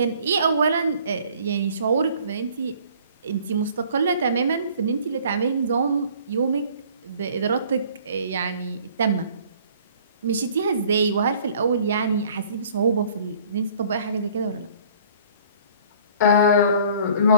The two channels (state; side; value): inverted; both; correlation -0.54